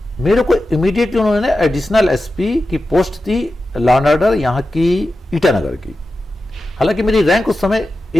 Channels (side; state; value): both; normal; correlation 0.92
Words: मेरे को इमीडिएटली उन्होंने एडिशनल एसपी की post the law and order यहाँ की ईटानगर की। हालांकि मेरी रैंक उस समय